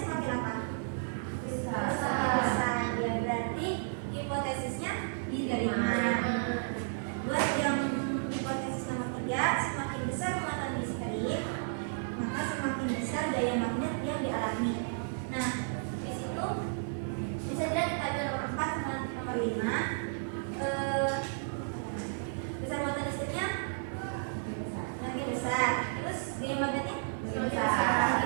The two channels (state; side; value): silent; left; 56 dB below the other